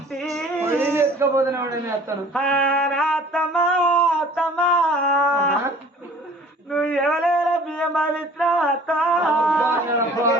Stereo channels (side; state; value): both; normal; correlation 0.50